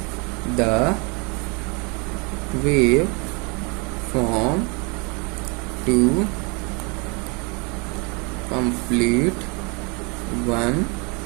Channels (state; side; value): quieter; left; 31.2 dB